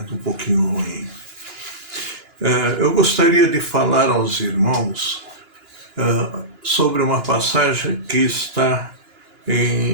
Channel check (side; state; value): left; late; 2.9 ms